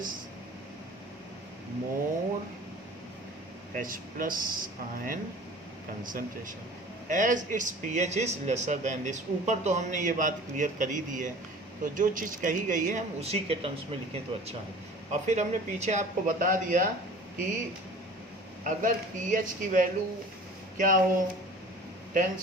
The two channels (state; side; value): normal; both; correlation 0.43